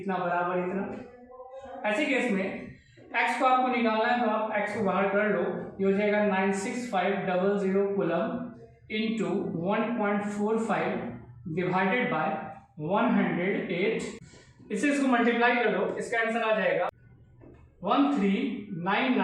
बराबर इतना। ऐसे केस में x को आपको निकालना है, तो आप x को बाहर कर लो, ये हो जाएगा 96500 कूलम इंटू 1.45 डिवाइडेड बाय 108, इसको मल्टीप्लाई कर दो, इसका आंसर आ जाएगा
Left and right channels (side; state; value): both; identical; correlation 1.00